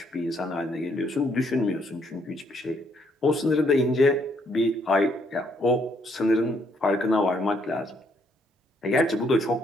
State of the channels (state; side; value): normal; both; correlation 0.70